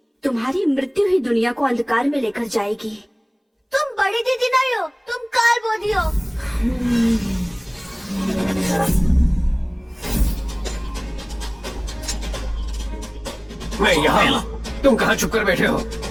तुम्हारी मृत्यु ही दुनिया को अंधकार में लेकर जाएगी। तुम बड़ी दीदी नहीं हो, तुम काल बोधी हो। मैं यहाँ, तुम कहाँ छुप कर बैठे हो?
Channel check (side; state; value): both; identical; correlation 1.00